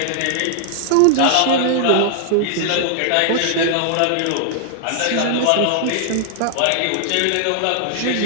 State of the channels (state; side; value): different; both; correlation -0.01